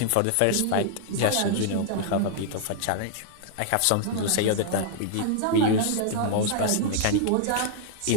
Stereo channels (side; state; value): both; different; correlation -0.01